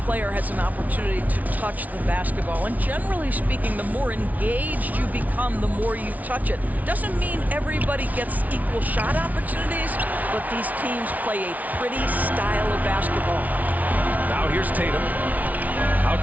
player has an opportunity to touch the basketball. And generally speaking, the more engaged you become, the more you touch it. Doesn't mean everybody gets equal shot opportunities, but these teams play a pretty style of basketball. Now here's Tatum.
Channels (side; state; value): left; late; 0.073 ms